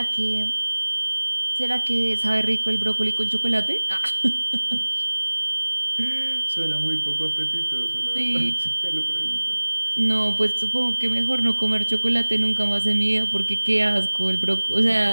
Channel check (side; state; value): both; inverted; correlation -1.00